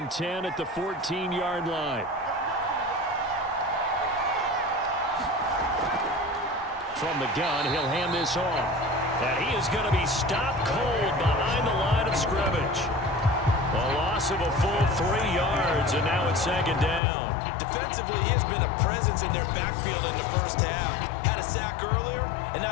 10 at the 14-yard line. From the gun, he'll hand this off. And he is going to be stopped cold behind the line of scrimmage. A loss of a full 3 yards, and now it's 2nd down. Defensively, he has been a presence in their backfield in the 1st half. Had a sack earlier, and now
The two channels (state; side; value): drops out; right; at 17.0 s